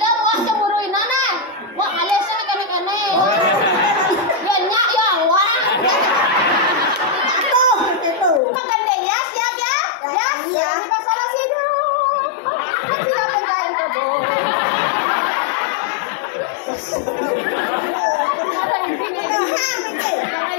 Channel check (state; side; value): drops out; right; at 8.4 s